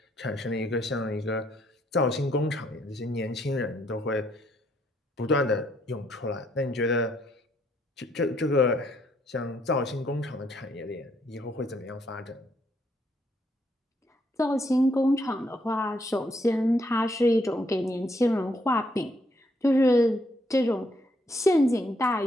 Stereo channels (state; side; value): normal; both; correlation 0.72